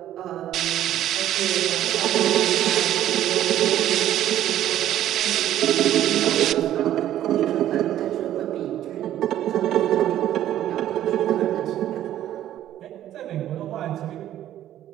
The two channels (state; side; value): quieter; left; 12.2 dB